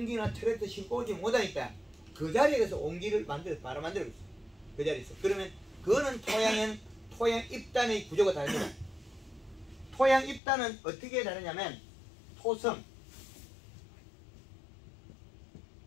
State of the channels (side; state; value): right; drops out; at 10.4 s